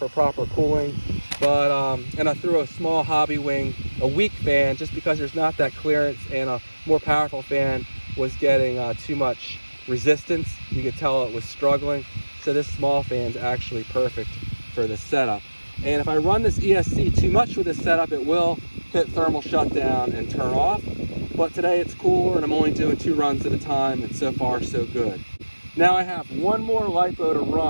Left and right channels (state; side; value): inverted; both; correlation -1.00